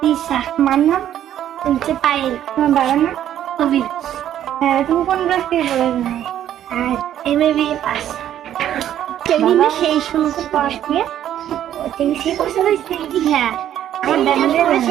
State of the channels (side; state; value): left; quieter; 11.1 dB